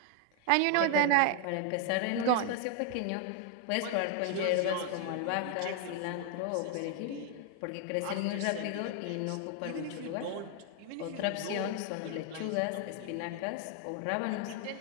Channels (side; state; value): both; different; correlation 0.01